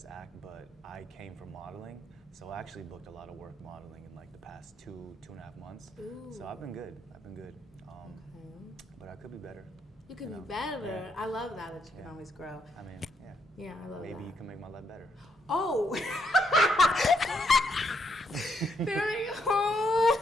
act, but I came from modeling, so I actually booked a lot of work modeling in, like, the past two and a half months. Ooh. So I've been good. Okay. But I could be better. You can know, be better. yeah. I love that you can always grow. I mean, yeah. Yeah, I love that. Maybe you can make my life better. Oh! There we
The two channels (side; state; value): both; normal; correlation 0.76